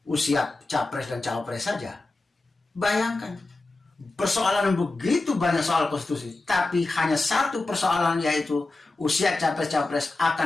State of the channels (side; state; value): right; quieter; 3.2 dB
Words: usia capres dan cawapres saja? Bayangkan, persoalan begitu banyak soal konstitusi, tapi hanya satu persoalan, yaitu usia capres-capres